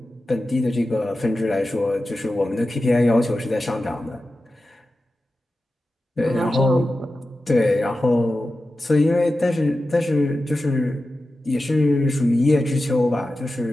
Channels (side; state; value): both; normal; correlation 0.93